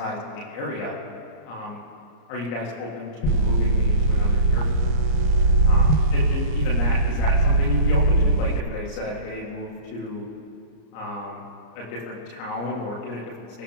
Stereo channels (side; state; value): right; late; 34 ms